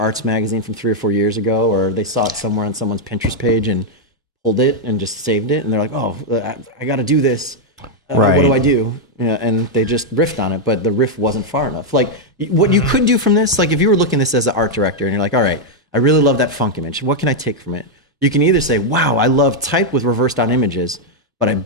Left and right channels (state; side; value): normal; both; correlation -0.01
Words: magazine from 3 or 4 years ago, or they saw it somewhere on someone's Pinterest page and pulled it and just saved it. And they're like, oh, I got to do this. Right. What do I do? Yeah, and they just riffed on it, but the riff wasn't far enough. Like, what you could do from this, like if you were looking at this as an art director and you're like, all right, I really love that funk image. What can I take from it? You can either say, wow, I love type with reversed on images, but I